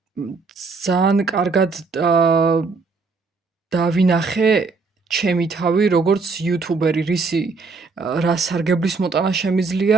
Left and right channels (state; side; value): quieter; left; 4.3 dB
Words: ძალიან კარგად დავინახე ჩემი თავი, როგორც YouTuber-ი, რა სარგებლის მოტანა